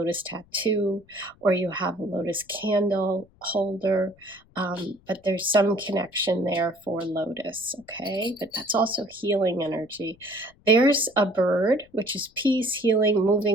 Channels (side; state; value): left; noise; rumble, 30 dB below the sound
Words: tattoo or you have a lotus candle holder. But there's some connection there for lotus, okay? But that's also healing energy. There's a bird, which is peace, healing,